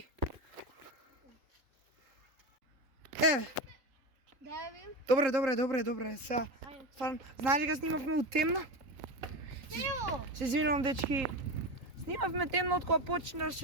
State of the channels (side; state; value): left; late; 3.8 ms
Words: Дај ви. Добре. Сега, стварно, знаеш ли га снимавме у темно? Ево. Се извинувам, дечки. Снимавме темно од кога